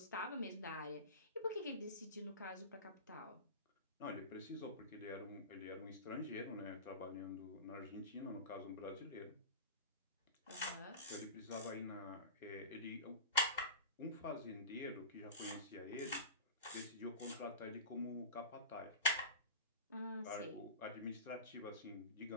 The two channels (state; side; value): inverted; both; correlation -0.31